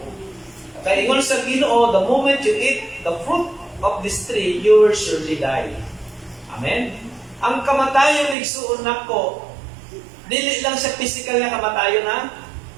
Kaya ingon sa Ginoo, the moment you eat the fruit of this tree, you will surely die. Amen? Ang kamatayon igsuon nako, dili lang siya physical na kamatayon na.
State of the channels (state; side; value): drops out; left; at 8.3 s